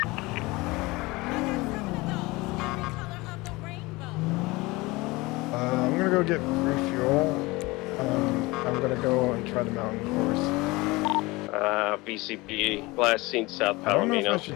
I'm gonna go get refuel. I'm gonna go and try the mountain course. BCB, last seen South I don't know if I Palomino.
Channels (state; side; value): quieter; right; 22.4 dB